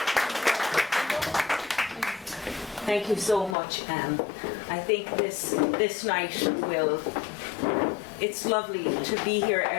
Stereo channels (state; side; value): drops out; right; at 3.6 s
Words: Thank you so much, Anne. I think this night it's lovely to be here